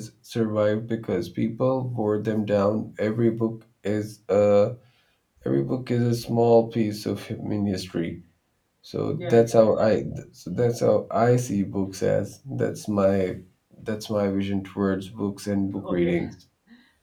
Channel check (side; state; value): both; identical; correlation 1.00